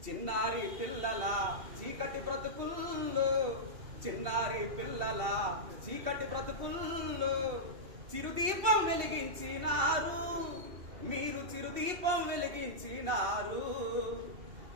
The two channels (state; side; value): late; left; 2.7 ms